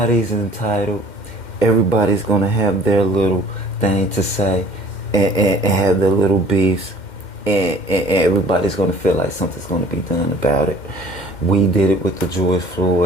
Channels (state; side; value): late; right; 2.1 ms